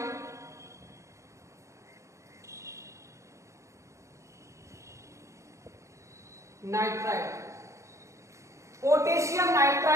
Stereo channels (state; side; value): late; left; 0.14 ms